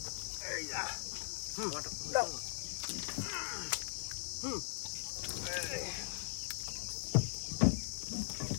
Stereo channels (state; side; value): silent; right; digital silence